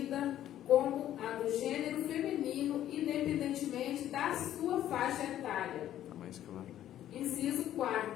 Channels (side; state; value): right; quieter; 12.0 dB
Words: como a do gênero feminino, independentemente da sua faixa etária. Tá mais claro. Inciso